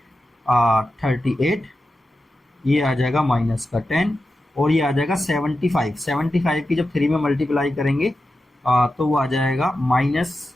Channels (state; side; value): normal; both; correlation 0.91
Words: ये आ जाएगा -10 और ये आ जाएगा 75 की जब 3 में मल्टीप्लाई करेंगे तो वो आ जाएगा